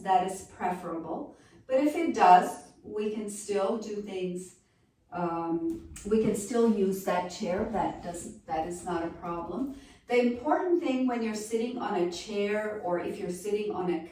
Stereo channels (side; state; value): both; identical; correlation 1.00